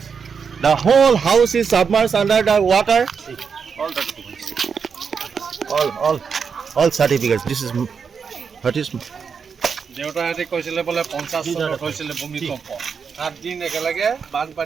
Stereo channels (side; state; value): left; quieter; 6.1 dB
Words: The whole house is submerged under the water. See, all the documents. All certificates. This is what is. দেউতাহঁতে কৈছিলে বোলে 50 চনত হৈছিলে ভূমিকম্প 7 দিন একেলগে